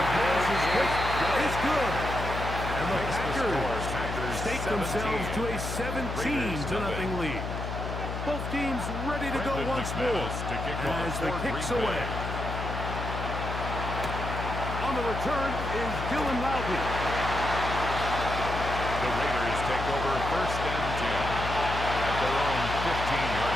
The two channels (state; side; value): noise; left; hum, 5 dB below the sound